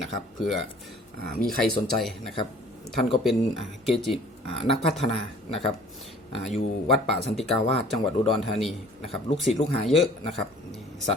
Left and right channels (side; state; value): both; normal; correlation 0.51